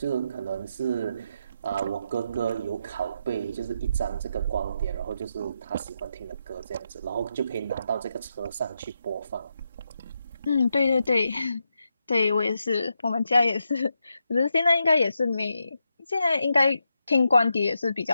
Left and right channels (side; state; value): both; inverted; correlation -0.83